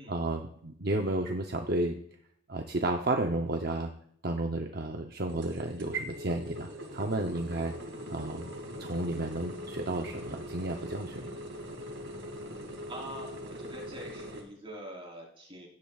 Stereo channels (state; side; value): normal; both; correlation 0.33